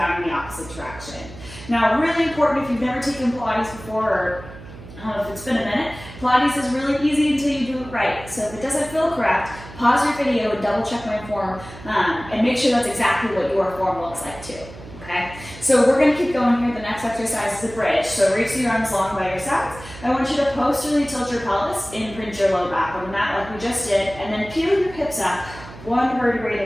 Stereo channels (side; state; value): right; noise; hum, 16 dB below the sound